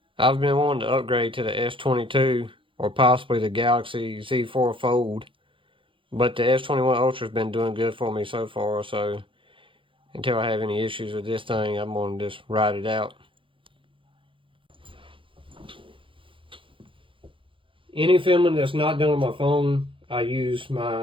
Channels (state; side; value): late; left; 0.25 ms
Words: I've been wanting to upgrade to the S22 or possibly the Galaxy Z4 Fold, but the S21 Ultra has been doing good for me so far, so until I have any issues with this thing, I'm going to just ride it out. Any filming that's not done on my phone, I use